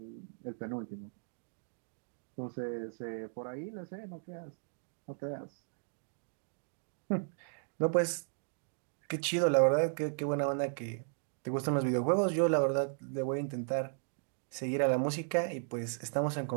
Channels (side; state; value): left; silent; digital silence